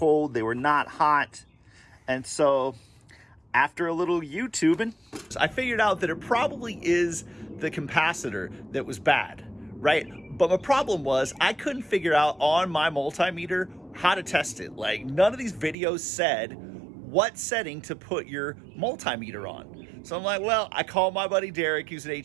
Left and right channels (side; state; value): left; drops out; at 15.8 s